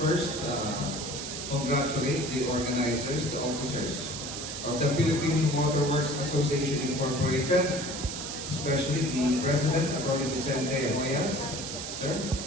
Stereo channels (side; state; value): right; noise; hiss, 7 dB below the sound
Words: congratulate the organizers, the officers of the Philippine Waterworks Association Incorporated, especially the President, Attorney Vicente Hoyas. Sir,